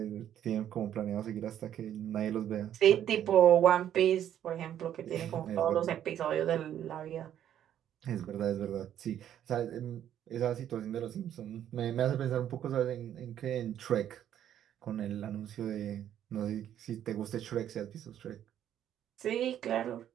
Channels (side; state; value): left; quieter; 10.6 dB